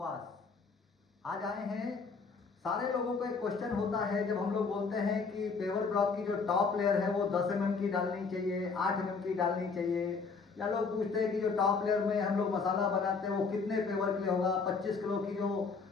आज आए हैं, सारे लोगों को एक क्वेश्चन होता है जब हम लोग बोलते हैं कि पेवर ब्लॉक की जो टॉप लेयर है वो 10 mm की डालनी चाहिए, 8 mm की डालनी चाहिए, या लोग पूछते हैं कि जो टॉप लेयर में हम लोग मसाला बनाते हैं वो कितने पेवर के लिए होगा। 25 किलो की जो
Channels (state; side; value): quieter; right; 4.8 dB